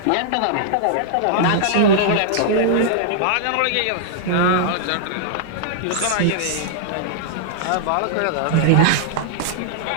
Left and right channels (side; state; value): both; different; correlation -0.01